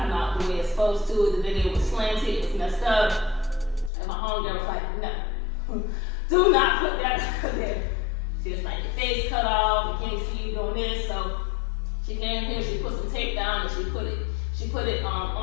out the way it's supposed to. The video was slanted, it was messed up. And my homegirl was like, no, do not put that there. She was like, your face cut off, we can't see you doing this. So she came here, she put some tape down and she put it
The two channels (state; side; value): drops out; right; at 3.9 s